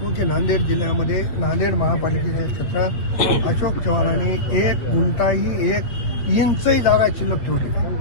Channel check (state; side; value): late; right; 8.0 ms